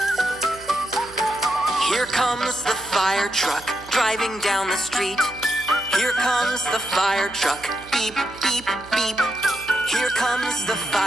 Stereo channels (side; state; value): right; noise; hum, 20 dB below the sound